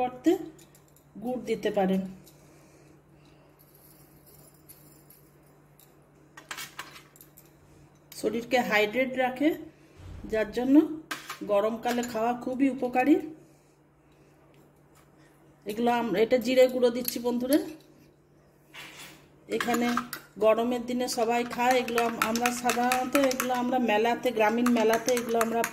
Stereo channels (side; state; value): both; identical; correlation 1.00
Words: গুড় দিতে পারেন। শরীরকে হাইড্রেট রাখে, যার জন্য গরমকালে খাওয়া খুবই উপকারী। এগুলো এটা জিরে গুঁড়ো দিচ্ছি বন্ধুরা। এখানে গরমের দিনে সবাই খায় এগুলো। আমরা সাধারণত এগুলো আমরা মেলাতে, গ্রামীণ মেলাতে এগুলো আমরা